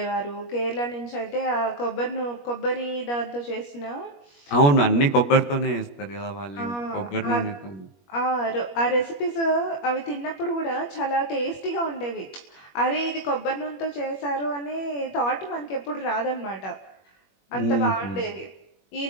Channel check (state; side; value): late; right; 21 ms